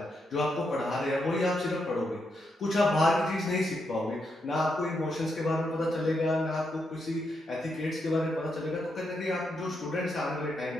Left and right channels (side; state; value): both; normal; correlation 0.82